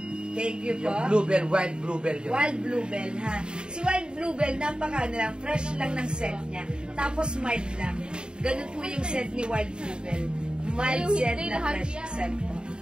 Thank you po. Yung Bluebell, Wild Bluebell yun. Wild Bluebell, ha? Si Wild Bluebell, napaka lang, fresh lang ng scent niya. Tapos mild lang. Ganun po yung scent ni Wild Bluebell. Mild scent na fresh scent po.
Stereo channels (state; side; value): late; left; 0.050 ms